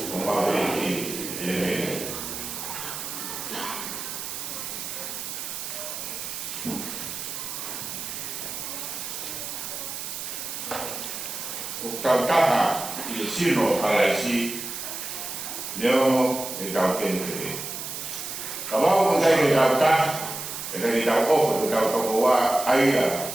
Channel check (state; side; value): noise; right; hiss, 6 dB below the sound